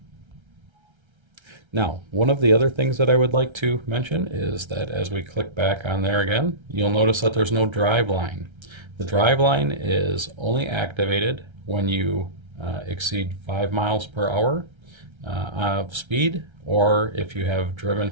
Now, one of the other things that I would like to mention is that as we click back on there again, you'll notice that there's no drive line. The drive line is only activated when you exceed 5 miles per hour of speed, or if you have driven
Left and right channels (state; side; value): late; left; 1.3 ms